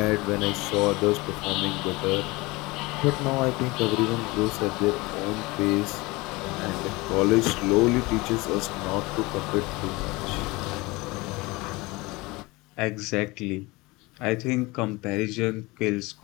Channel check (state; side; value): quieter; right; 23.0 dB